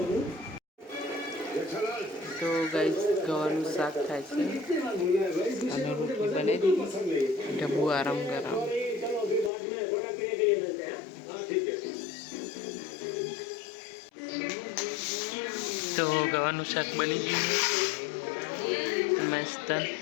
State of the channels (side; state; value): right; drops out; at 9.5 s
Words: તો ગાઈસ ગવાનું શાક થાય છે અને રોટલી બનાવી દીધી એટલે બહુ આરામ કરાવ. તો ગવાનું શાક બની ગયું મસ્ત,